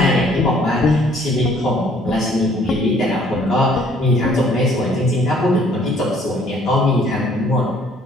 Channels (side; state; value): both; normal; correlation 0.60